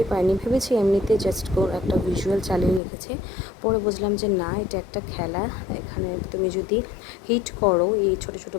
পারিনি, ভেবেছি এমনিতে জাস্ট একটা ভিজুয়াল চালিয়ে রেখেছে। পরে বুঝলাম যে না, এটা একটা খেলা। এখানে তুমি যদি হিট করো, এই ছোটো ছোটো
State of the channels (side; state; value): right; drops out; at 2.8 s